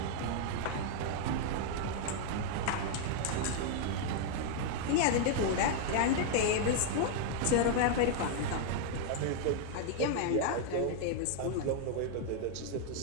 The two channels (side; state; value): both; different; correlation 0.00